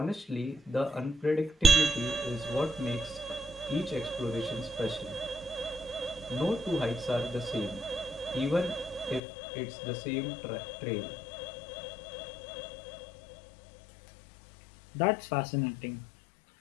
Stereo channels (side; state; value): right; drops out; at 9.2 s